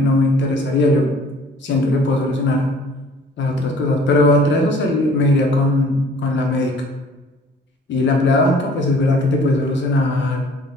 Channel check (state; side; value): normal; both; correlation 0.53